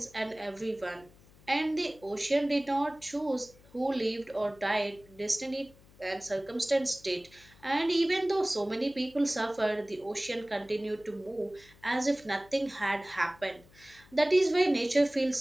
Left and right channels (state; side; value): noise; left; hum, 26 dB below the sound